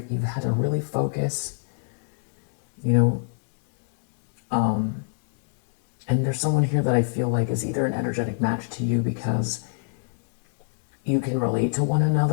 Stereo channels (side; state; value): right; silent; digital silence